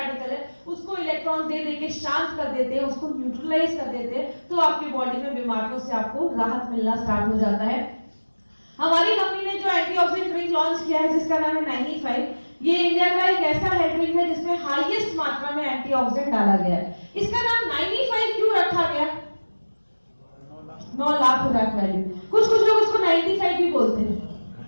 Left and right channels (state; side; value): inverted; both; correlation -1.00